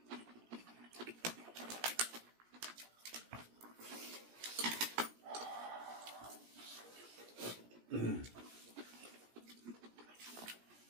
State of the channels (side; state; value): left; late; 17 ms